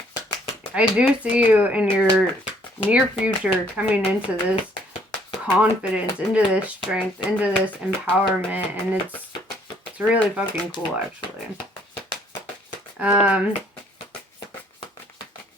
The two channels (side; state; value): both; normal; correlation 0.63